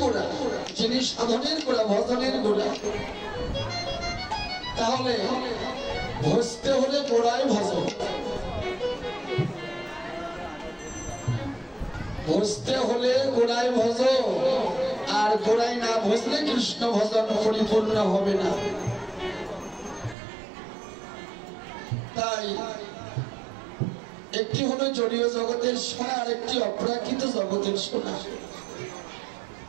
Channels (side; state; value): left; drops out; at 20.2 s